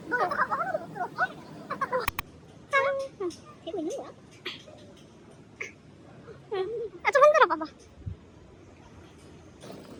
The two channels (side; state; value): both; identical; correlation 1.00